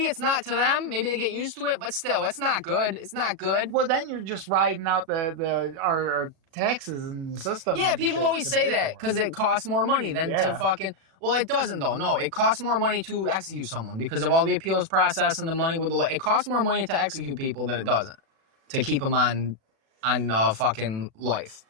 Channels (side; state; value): left; late; 36 ms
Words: it's not to them. Maybe they get used to it. But still, it's not good. It's not good. Well, then you're just riding out our taxes and the system. Yeah, people always say that because it costs more money than to fucking. Well, it doesn't though. No, it costs more money to execute someone because of all the appeals process and the money with the. It costs more money to execute people than it doesn't to keep them on fucking life.